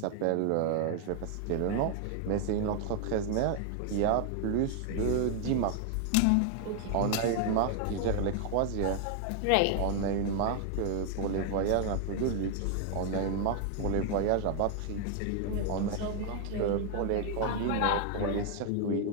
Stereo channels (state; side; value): different; both; correlation 0.00